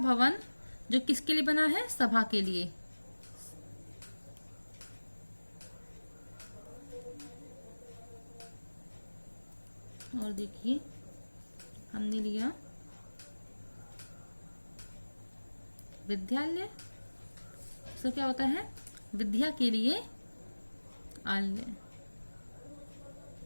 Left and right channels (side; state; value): both; inverted; correlation -1.00